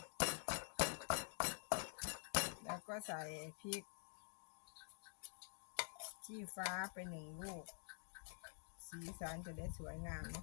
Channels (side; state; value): right; silent; digital silence